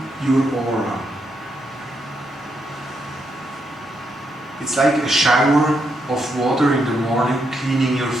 your aura. It's like a shower of water in the morning, cleaning your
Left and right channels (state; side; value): normal; both; correlation 0.80